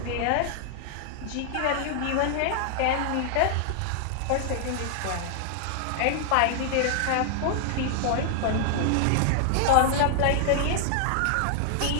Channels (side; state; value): both; different; correlation 0.00